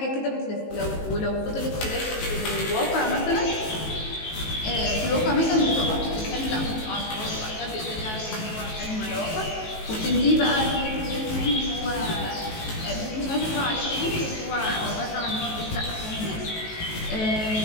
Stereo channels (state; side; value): late; right; 19 ms